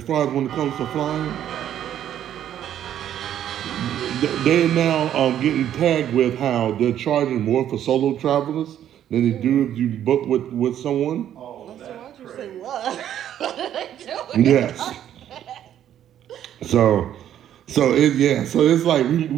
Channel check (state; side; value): quieter; left; 10.7 dB